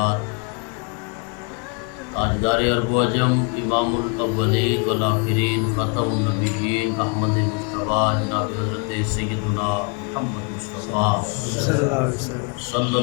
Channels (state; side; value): quieter; right; 36.2 dB